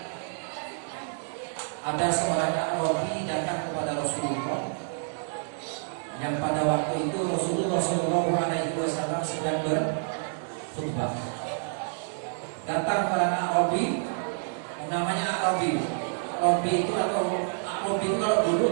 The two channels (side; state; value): left; silent; digital silence